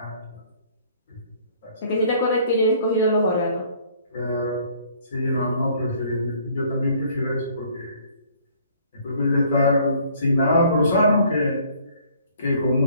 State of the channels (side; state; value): both; inverted; correlation -0.59